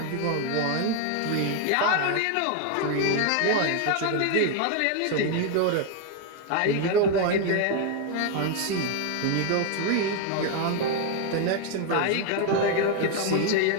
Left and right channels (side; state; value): both; different; correlation 0.01